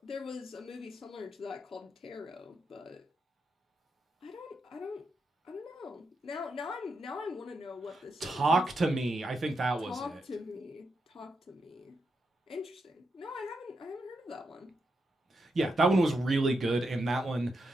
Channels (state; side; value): normal; both; correlation 0.84